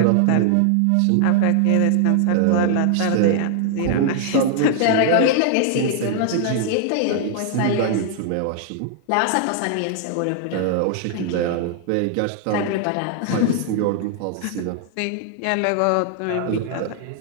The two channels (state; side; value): different; both; correlation 0.00